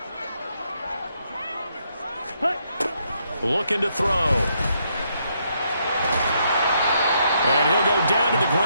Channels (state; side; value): inverted; both; correlation -0.75